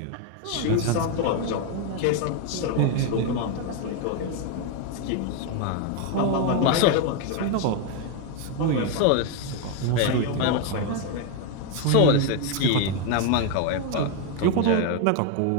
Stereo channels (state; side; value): different; both; correlation 0.01